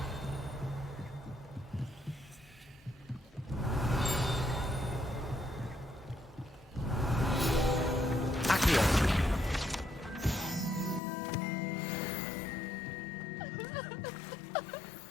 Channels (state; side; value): drops out; right; at 11.0 s